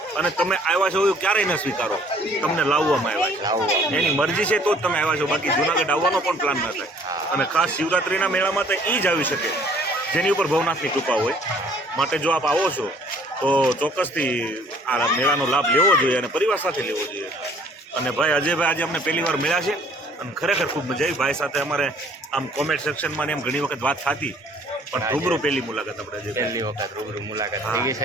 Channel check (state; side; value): normal; both; correlation 0.57